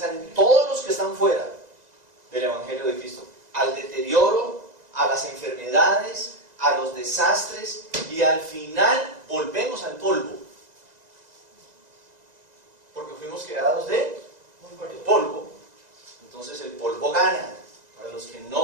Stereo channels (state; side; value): late; left; 2.0 ms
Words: en todos los que están fuera del Evangelio de Cristo. Al deterioro, a las enfermedades, a los desastres, y al final volvemos al polvo. Porque fuimos creados de polvo. Entonces el polvo gana para los que